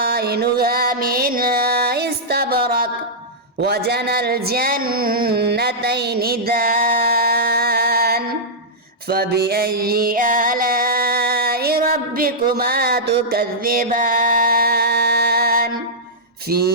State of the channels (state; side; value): normal; both; correlation -0.11